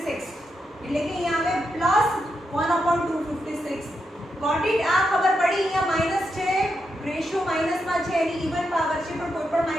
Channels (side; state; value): both; normal; correlation 0.84